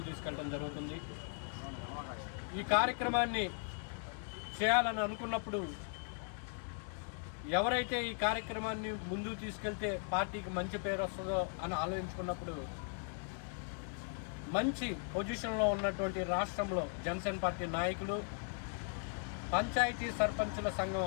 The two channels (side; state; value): right; silent; 52 dB below the other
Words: తీసుకెళ్ళడం జరుగుతుంది. ఈ కార్యక్రమాన్ని చేయాలని అనుకున్నప్పుడు ఎవరైతే ఈ కార్యక్రమాన్ని ముందుకు తీసుకెళ్తే పార్టీకి మంచి పేరు వస్తుందో అని ఆలోచించుకున్నప్పుడు మంచి పొజిషన్లో ఉన్నటువంటి రాష్ట్రంలో జనసేన పార్టీ నాయకులు, పంచాయతీ సర్పంచుల సంఘం